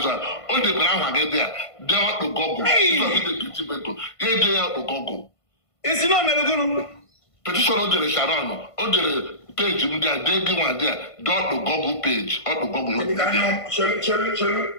all the ground get there, they ought to go. They ought to go. It's not Melbourne. Petition on the Sharon, on the page, they give one there, dot the Google page, or the Google.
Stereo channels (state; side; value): late; right; 1.5 ms